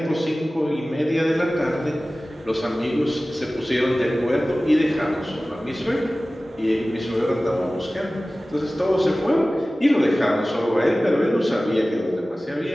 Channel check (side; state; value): both; normal; correlation 0.97